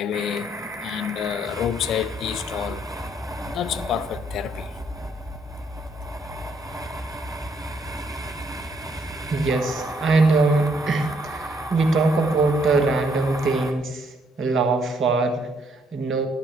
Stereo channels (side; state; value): both; normal; correlation 0.70